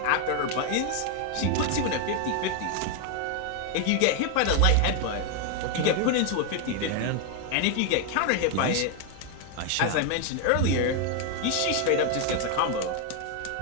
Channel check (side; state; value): both; different; correlation 0.01